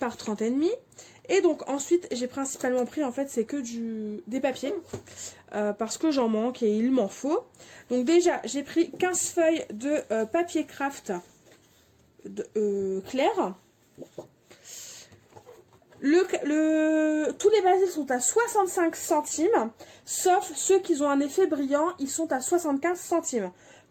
30,5. Et donc ensuite j'ai principalement pris en fait c'est que des papiers. Parce que j'en manque et il m'en faut. Donc déjà j'ai pris 15 feuilles de papier craft clair. Tous les basiles sont à 65 centimes, sauf ceux qui ont un effet brillant, ils sont à 75 centimes.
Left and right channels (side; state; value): both; identical; correlation 1.00